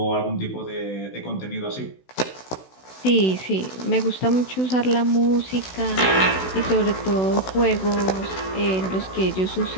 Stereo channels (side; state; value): right; late; 16 ms